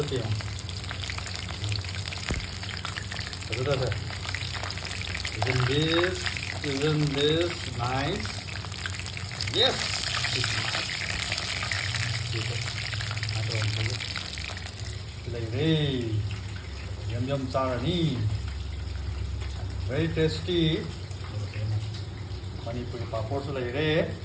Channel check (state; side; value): identical; both; correlation 1.00